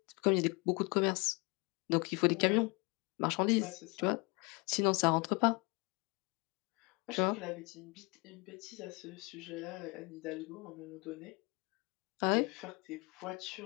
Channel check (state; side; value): quieter; right; 28.7 dB